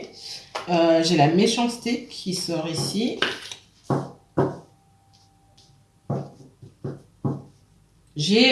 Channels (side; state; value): both; identical; correlation 1.00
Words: la méchanceté qui sort ici.